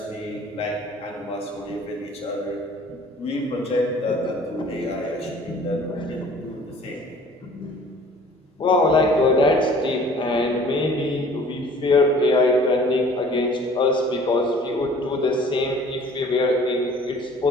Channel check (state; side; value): normal; both; correlation 0.51